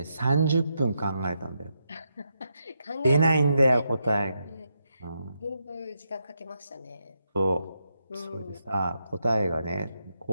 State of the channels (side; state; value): both; inverted; correlation -0.82